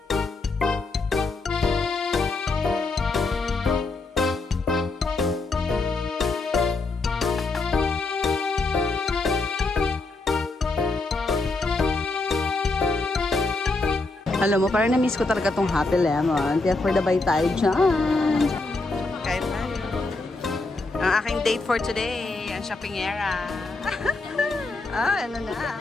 Alam mo, parang na-miss ko talaga tong Happy Lemon. Kaya for the bye tayo dyan. Kain tayo. Ang aking date for today, ang shopping era. Ano na.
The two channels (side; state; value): right; quieter; 3.4 dB